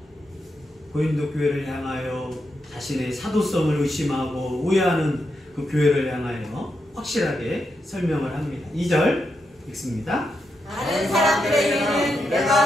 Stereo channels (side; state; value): both; normal; correlation 0.84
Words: 고린도 교회를 향하여 자신의 사도성을 의심하고 오해하는 그 교회를 향하여 확실하게 설명을 합니다. 2절 읽습니다. 다른 사람들에게는 내가